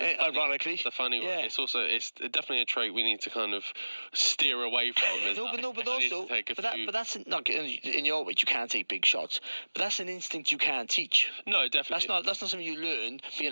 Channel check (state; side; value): inverted; both; correlation -1.00